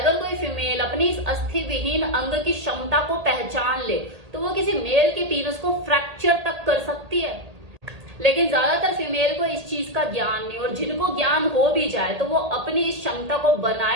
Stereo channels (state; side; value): late; left; 1.8 ms